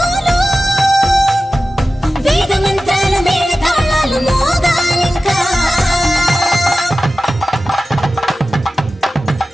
వేద మంత్రాల మేళ తాళాలు మోగాలింకా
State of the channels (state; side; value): normal; both; correlation 0.95